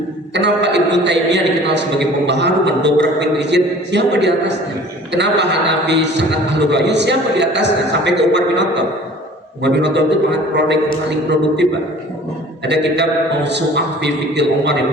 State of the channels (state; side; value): normal; both; correlation 0.47